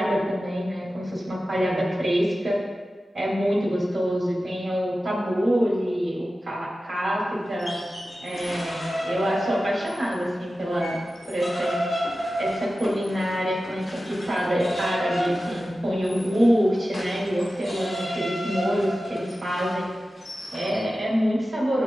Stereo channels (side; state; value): both; normal; correlation 0.94